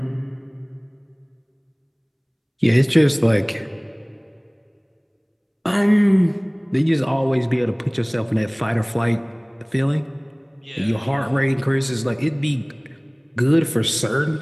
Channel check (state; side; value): identical; both; correlation 1.00